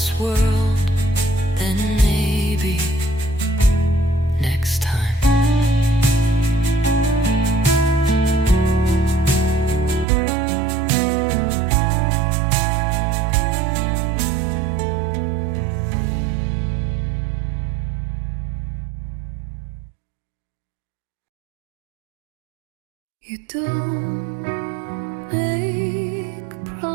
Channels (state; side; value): drops out; left; at 10.1 s